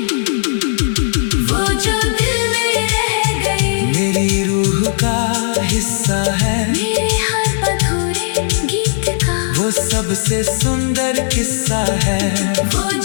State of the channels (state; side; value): silent; right; 62 dB below the other